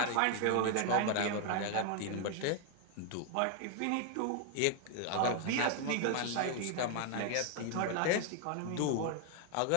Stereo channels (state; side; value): different; both; correlation 0.00